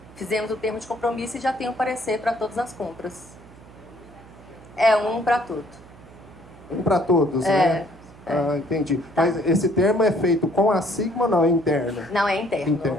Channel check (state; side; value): noise; right; hum, 22 dB below the sound